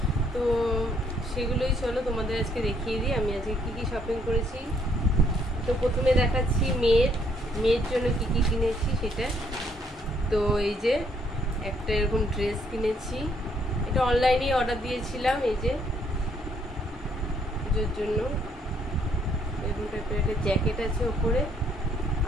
তো সেগুলোই চলো তোমাদের আজকে দেখিয়ে দিই আমি আজকে কি শপিং করেছি। তো প্রথমে দেখাচ্ছি মেয়ের জন্য কি কিনেছি সেটা। তো এই যে একটা এরকম ড্রেস কিনেছি, এটা অনলাইনেই অর্ডার দিয়েছিলাম। এই যে পুজোর জন্য এরকম টাইপের একটা জ্যাকেট আছে ওপরে,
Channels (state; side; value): normal; both; correlation 0.68